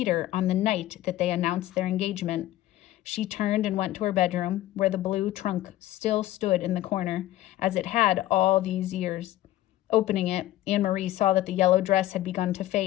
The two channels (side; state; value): right; quieter; 14.8 dB